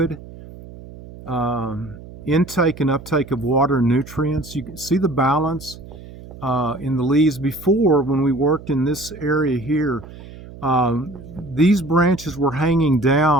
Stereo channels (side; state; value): right; noise; hum, 16 dB below the sound